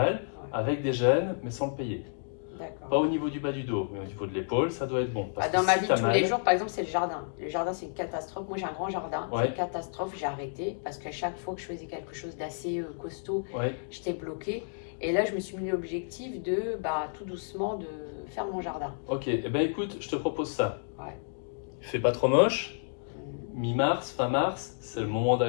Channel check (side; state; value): right; silent; digital silence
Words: avec des gènes, mais sans le payer. D'accord. Pas au niveau du bas du dos, mais au niveau de l'épaule, ça doit être bon. Dans ma vie de tous les jours, par exemple, c'est le jardin. Le jardin, c'est une catastrophe. Moi, j'ai un grand jardin. C'est une catastrophe. J'ai arrêté parce qu'à chaque fois que je faisais quelque chose d'assez costaud, j'étais bloquée. Et là, je me suis mis l'objectif de, tout doucement, de faire mon jardin. Ok, écoute, je te propose ça. Fais pas trop moche. Mi-mars, fin mars, c'est le moment